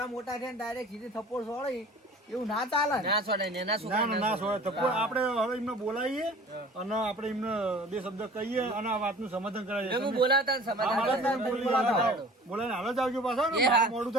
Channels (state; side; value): normal; both; correlation 0.45